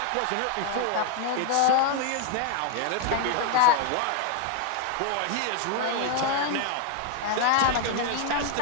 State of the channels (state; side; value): different; both; correlation 0.01